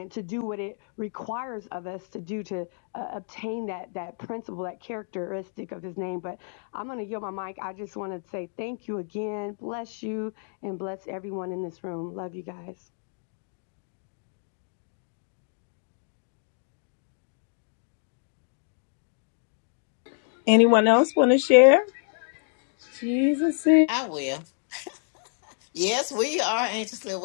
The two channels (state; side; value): silent; right; 59 dB below the other